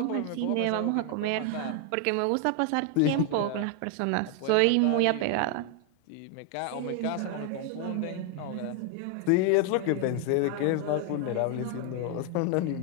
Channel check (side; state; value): both; different; correlation 0.00